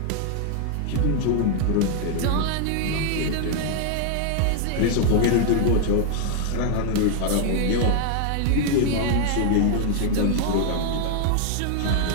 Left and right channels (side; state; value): both; different; correlation 0.00